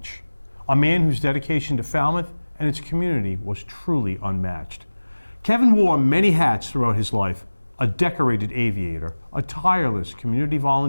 a man whose dedication to Falmouth and its community was truly unmatched. Kevin wore many hats throughout his life: a decorated aviator, a tireless community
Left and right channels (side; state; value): both; inverted; correlation -1.00